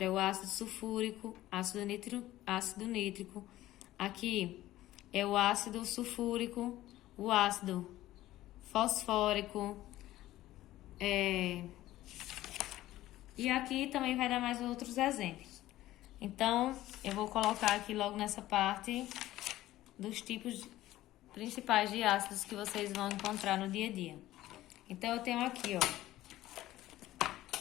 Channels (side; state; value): right; quieter; 15.3 dB